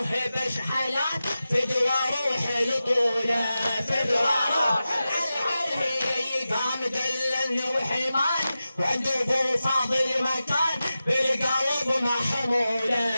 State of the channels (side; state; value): both; inverted; correlation -0.93